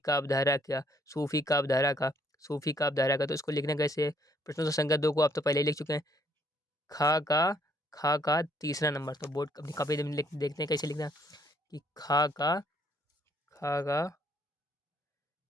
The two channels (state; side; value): normal; both; correlation 0.67